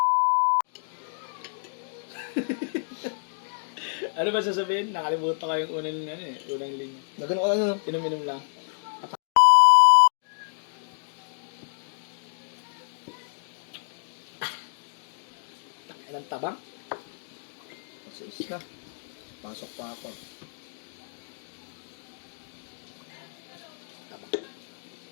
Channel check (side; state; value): right; silent; digital silence